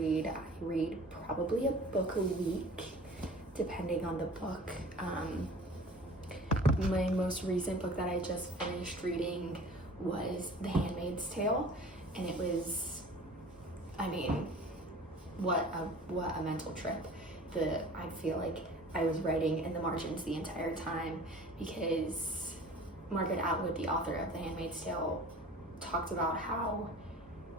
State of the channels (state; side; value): normal; both; correlation 0.44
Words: I read probably a book a week, depending on the book. My most recent book that I just finished reading was The Handmaid's Tale, and it was, I mean, what a mental trip. I feel like I was writing in the margins the entire time because Margaret Atwood, the author of The Handmaid's Tale, talked about how